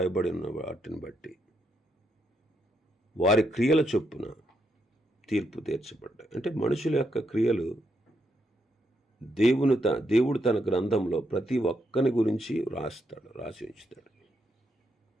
వాటిని బట్టి వారి క్రియల చొప్పున తీర్పు తీర్చబడ్డాయి. అంటే మనుషుల యొక్క క్రియలు దేవుడు తన గ్రంథంలో ప్రతి ఒక్కని గురించి రాసి ఉంచుతాడు.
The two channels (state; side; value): normal; both; correlation 0.79